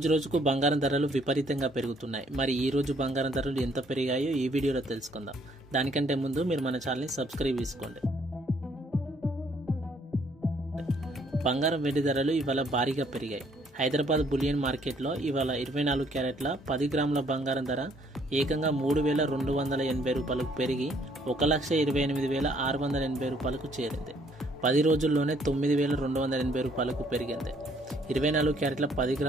రోజుకు బంగారం ధరలు విపరీతంగా పెరుగుతున్నాయి. మరి ఈ రోజు బంగారం ధరలు ఎంత పెరిగాయో ఈ వీడియోలో తెలుసుకుందాం. దానికంటే ముందు మీరు మన ఛానల్ని సబ్స్క్రైబ్ చేసుకోండి. బంగారం వెండి ధరలు ఇవాళ భారీగా పెరిగాయి. హైదరాబాద్ బులియన్ మార్కెట్లో ఇవాళ 24 క్యారెట్ల 10 గ్రాముల బంగారం ధర ఏకంగా 3,280 రూపాయలకు పెరిగి 1,28,680 రూపాయలకు చేరింది. 10 రోజుల్లోనే 9,280 రూపాయలకు పెరిగింది. 24 క్యారెట్ల 10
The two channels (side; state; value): both; normal; correlation 0.65